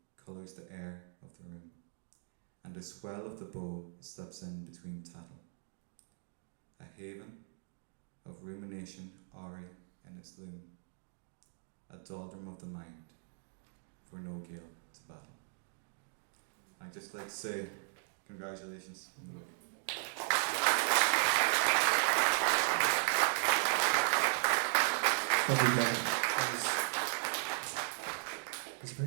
colours the air of the room, and a swell of the bow slips in between tattle. A haven of rumination awry in its loom, a doldrum of the mind, for no gale to battle. I'd just like to say congratulations on the book. Lovely, Kevin. It's a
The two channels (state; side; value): silent; left; digital silence